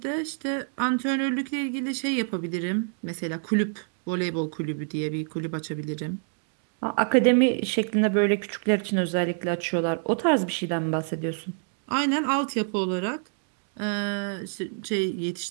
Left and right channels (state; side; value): silent; left; digital silence